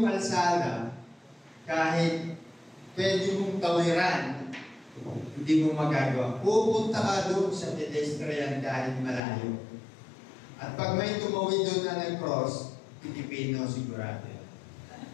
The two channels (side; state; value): right; drops out; at 9.2 s